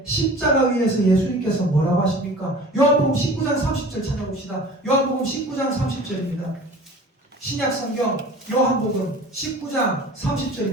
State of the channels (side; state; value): both; normal; correlation 0.42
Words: 십자가 위에서 예수님께서 뭐라고 하십니까? 요한복음 19장 30절 찾아봅시다. 요한복음 19장 30절입니다. 신약성경 요한복음 19장